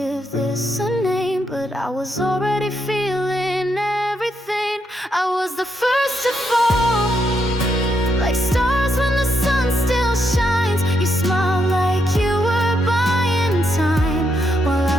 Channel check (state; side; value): normal; both; correlation 0.79